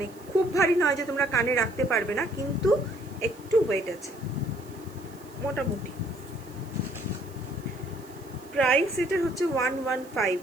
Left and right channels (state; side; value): noise; right; hiss, 24 dB below the sound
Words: খুব ভারী নয় যে তোমরা কানে রাখতে পারবে না, কিন্তু একটু ওয়েট আছে মোটামুটি। প্রাইস এটা হচ্ছে 115,